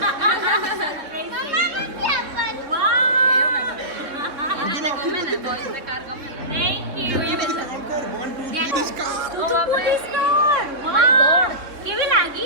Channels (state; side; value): late; left; 3.6 ms